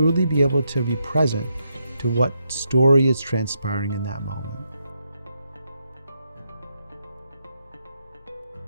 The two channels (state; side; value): inverted; both; correlation -0.80